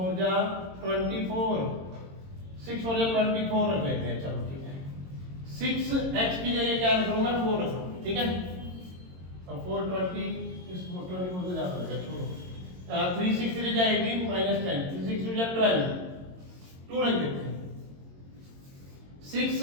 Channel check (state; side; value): late; left; 22 ms